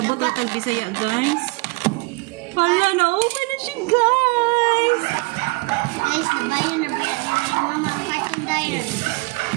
ang tag-Bisaya guys. Hala, na-open na siya guys. Guys, nabayan na ba yan ni mama ang cartoon dayan?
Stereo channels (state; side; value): quieter; left; 25.4 dB